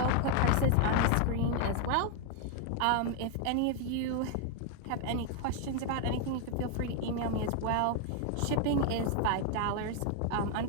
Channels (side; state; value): both; different; correlation 0.01